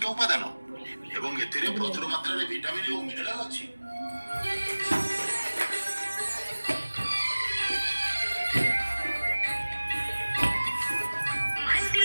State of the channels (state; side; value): inverted; both; correlation -1.00